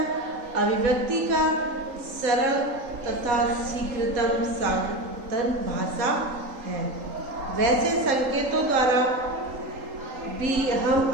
अभिव्यक्ति का सरल तथा शीघ्रतम साधन भाषा है। वैसे संकेतों द्वारा भी हम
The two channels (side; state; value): left; late; 3.8 ms